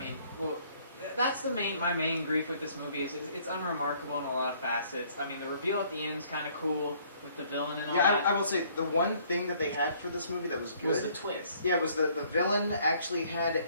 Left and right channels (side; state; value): both; inverted; correlation -0.61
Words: that's my main grief with this movie is it's unremarkable in a lot of facets. The reveal at the end is kind of cool with the villain and all that. I will say the one thing that they had for this movie that was good was the twist. Yeah, was the villain actually had